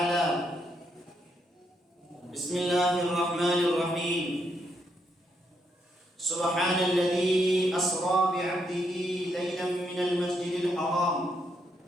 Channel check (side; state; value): both; normal; correlation 0.77